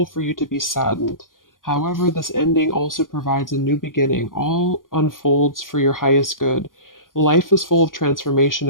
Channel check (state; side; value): late; right; 0.90 ms